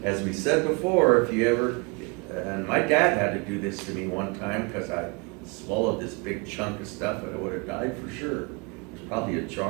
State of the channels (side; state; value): left; quieter; 30.2 dB